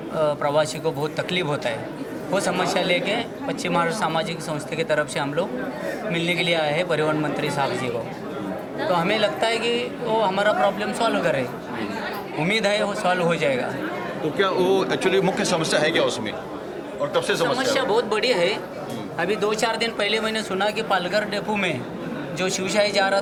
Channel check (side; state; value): both; identical; correlation 1.00